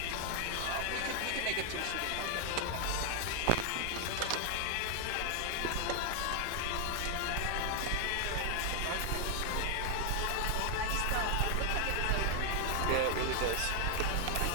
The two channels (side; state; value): both; different; correlation 0.00